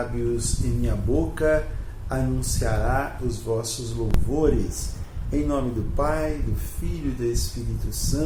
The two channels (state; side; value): identical; both; correlation 1.00